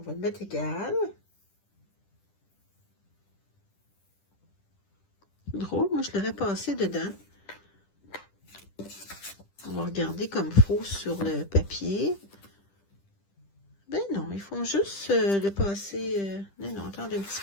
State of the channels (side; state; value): right; late; 10 ms